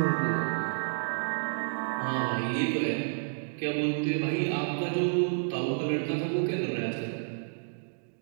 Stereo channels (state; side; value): silent; left; digital silence